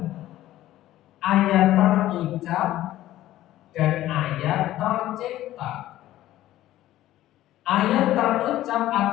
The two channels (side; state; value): right; quieter; 14.4 dB